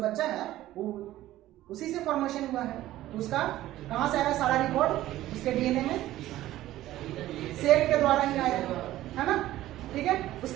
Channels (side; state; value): left; quieter; 14.9 dB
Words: बच्चा है वो उसी से फॉर्मेशन हुआ है। तो उसका कहाँ से आया सारा रिकॉर्ड? उसके डीएनए में, सेल के द्वारा ही आया, है ना, ठीक है।